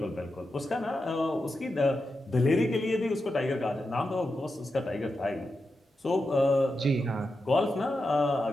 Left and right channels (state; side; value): normal; both; correlation 0.88